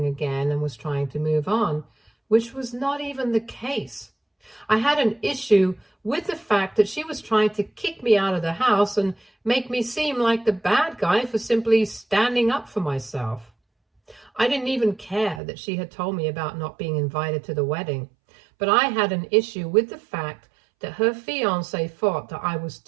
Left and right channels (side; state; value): left; drops out; at 15.4 s